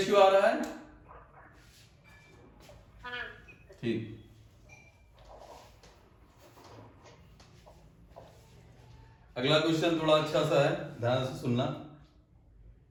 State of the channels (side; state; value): both; identical; correlation 1.00